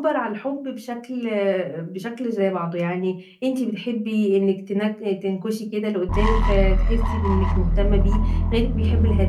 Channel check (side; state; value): both; identical; correlation 1.00